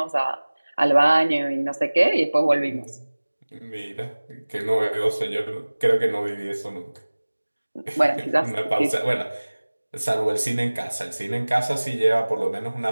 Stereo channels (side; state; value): both; inverted; correlation -1.00